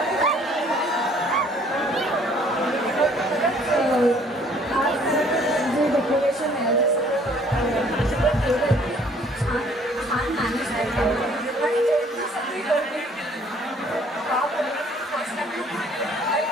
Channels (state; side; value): normal; both; correlation 0.59